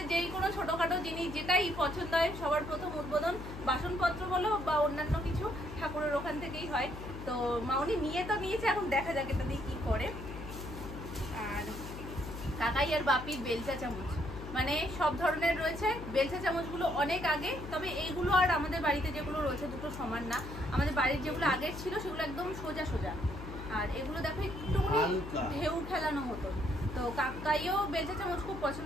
যেই কোনো ছোটোখাটো জিনিস যেটাই পছন্দ হয়, সবার প্রথম উদ্বোধন বাসনপত্র বলো বা অন্যান্য কিছু ঠাকুরের ওখান থেকেই হয়। তো মামুনি নিয়ে তো নিয়েছে, এখন দেখা যাক এটা দিয়ে কী করে। আর কাকাই আর বাপির বেলচা চামচ, মানে সব ধরনের রয়েছে। বেলচা চামচগুলো অনেক আগে, তবে এইগুলো আর আমাদের বাড়িতে যেগুলো রয়েছে দুটো সমান না। আমাদের বাড়ির যেগুলো আগের ছিল সেগুলো একদম সোজা সোজা, আর এগুলো দেখো একটুখানি ঢেউ খেলানো মতো। তো কাকাইও বেলচা চামচ খুব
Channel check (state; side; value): noise; left; hum, 10 dB below the sound